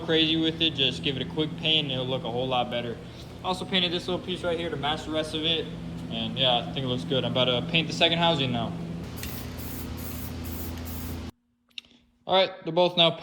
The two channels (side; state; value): both; identical; correlation 1.00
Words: with it. Just give it a quick paint and it'll look a whole lot better. I also painted this little piece right here to match the rest of it. And yeah, I think it looks good. I'm about to paint the second housing now. All right, they're both now